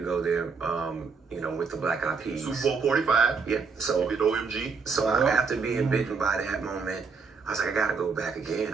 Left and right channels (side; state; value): left; quieter; 5.1 dB